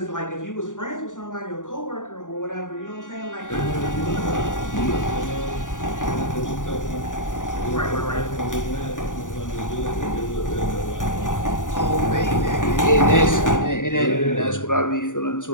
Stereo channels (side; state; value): right; late; 0.87 ms